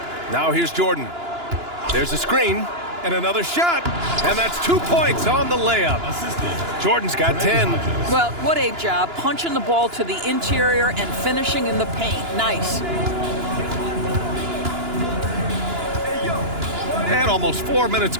Now here's Jordan. There's a screen and another shot. And that's 2 points on the layup. Jordan's got 10. Well, what a job. Punching the ball to the interior and finishing in the paint. Nice. And almost 4 minutes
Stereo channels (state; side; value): late; left; 2.9 ms